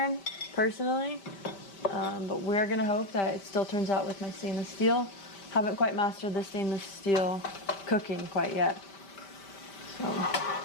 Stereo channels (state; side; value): late; right; 5.1 ms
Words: personally, but we're gonna hope that it still turns out with my stainless steel. Haven't quite mastered the stainless steel cooking quite yet. So